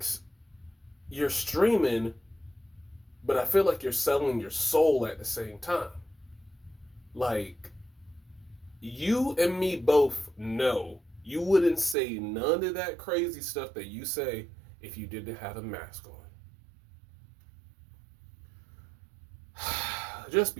you're streaming, but I feel like you're selling your soul at the same time. Like, you and me both know you wouldn't say none of that crazy stuff that you say if you didn't have a mask on. Just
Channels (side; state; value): left; drops out; at 12.0 s